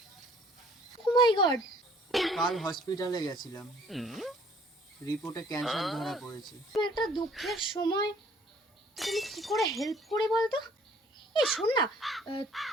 ও মাই গড। কাল হসপিটালে গেছিলাম, রিপোর্টে ক্যান্সার ধরা পড়েছে। একটা দুঃখের সময় তুমি কি করে হেল্প করে বলতো? এই শোন না,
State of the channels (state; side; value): normal; both; correlation 0.58